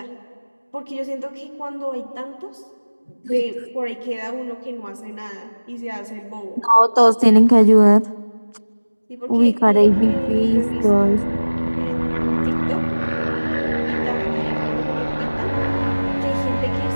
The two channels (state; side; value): inverted; both; correlation -1.00